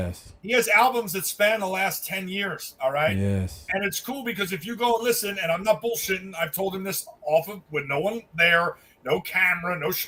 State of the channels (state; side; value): identical; both; correlation 1.00